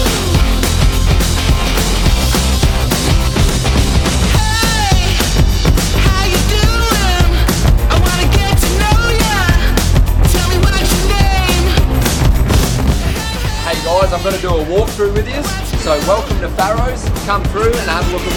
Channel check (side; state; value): both; identical; correlation 1.00